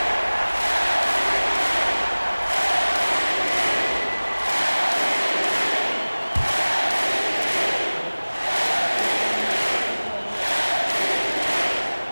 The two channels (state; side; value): inverted; both; correlation -1.00